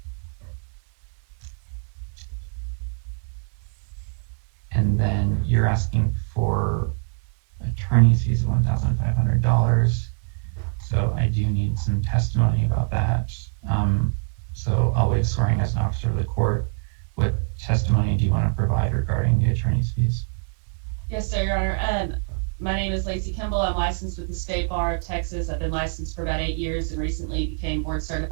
And then you're asking for attorney's fees of $1,500. So I do need some testimony about that. So I'll waive swearing as an officer of the court. What testimony do you want to provide regarding the attorney's fees? Yes, sir, Your Honor. My name is Lacey Kimball. I'm licensed with the State Bar of Texas. I've been licensed for about 8 years and recently became board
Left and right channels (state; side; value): silent; left; digital silence